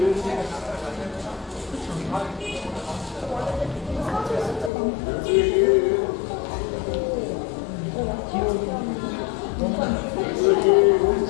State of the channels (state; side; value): drops out; right; at 4.7 s